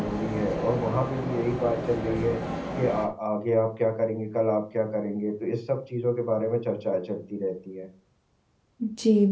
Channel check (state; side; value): identical; both; correlation 1.00